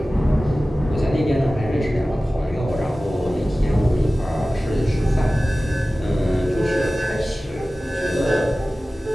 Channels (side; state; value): both; normal; correlation 0.97